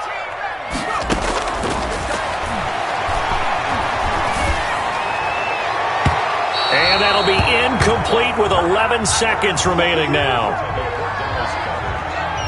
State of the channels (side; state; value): both; identical; correlation 1.00